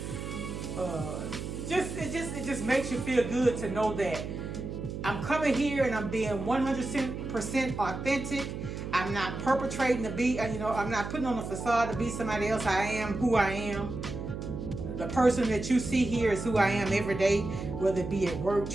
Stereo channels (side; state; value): right; noise; hum, 6 dB below the sound